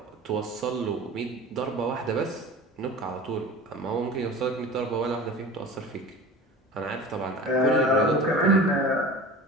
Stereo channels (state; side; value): normal; both; correlation 0.37